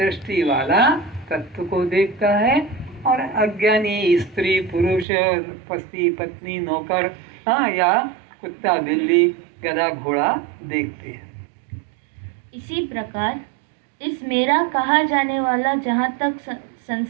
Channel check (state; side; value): drops out; left; at 5.1 s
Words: वाला तत्व को देखता है, और अज्ञानी स्त्री पुरुष पति पत्नी नौकर या कुत्ता बिल्ली गधा घोड़ा देखते हैं। इसी प्रकार इस मेरा कहा जाने वाला जहाँ तक